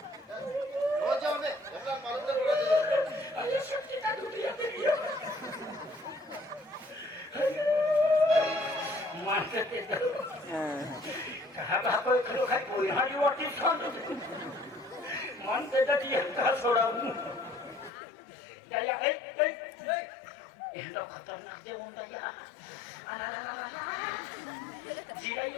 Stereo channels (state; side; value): drops out; right; at 17.9 s